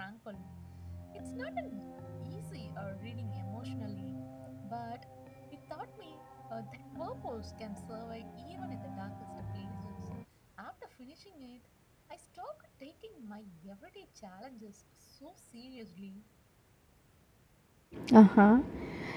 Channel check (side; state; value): both; identical; correlation 1.00